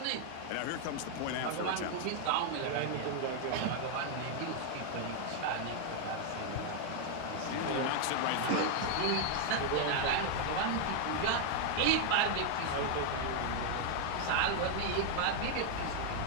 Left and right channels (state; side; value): different; both; correlation 0.00